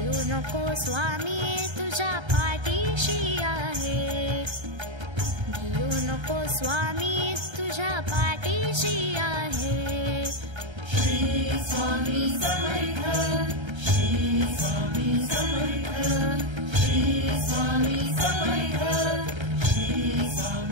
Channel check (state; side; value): late; left; 1.3 ms